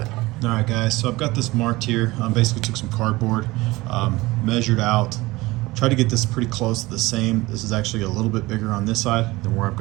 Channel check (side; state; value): left; quieter; 20.4 dB